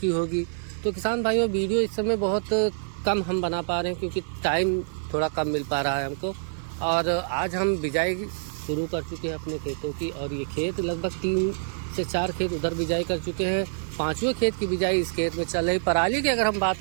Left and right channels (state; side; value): silent; left; 57 dB below the other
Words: होगी। तो किसान भाइयों, वीडियो इस समय बहुत कम हम बना पा रहे हैं क्योंकि टाइम थोड़ा कम मिल पा रहा है हमको। और आज हम बिजाई शुरू कर चुके हैं अपने खेतों की, और ये खेत लगभग 3 से 4 खेत उधर बिजाई कर चुके हैं। 5वें खेत की बिजाई इस खेत में चल रही। पराली की अगर हम